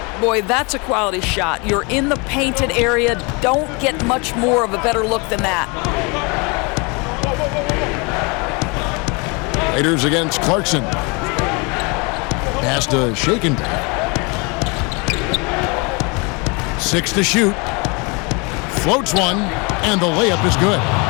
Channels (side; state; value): right; quieter; 29.9 dB